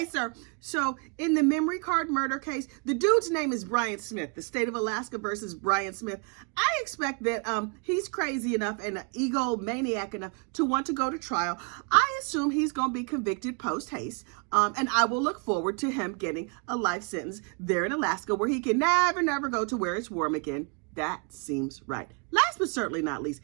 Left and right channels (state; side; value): quieter; left; 36.3 dB